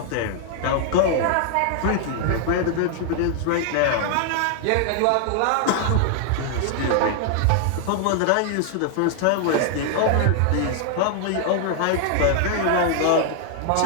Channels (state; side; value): different; both; correlation 0.00